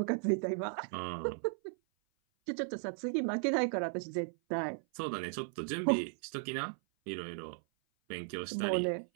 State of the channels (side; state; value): left; silent; 54 dB below the other